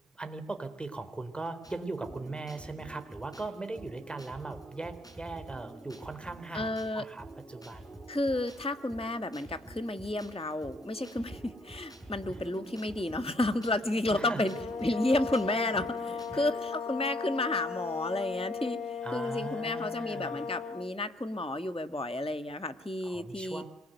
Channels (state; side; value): normal; both; correlation 0.69